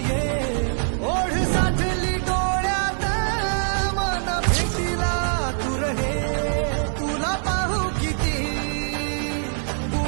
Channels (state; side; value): silent; left; digital silence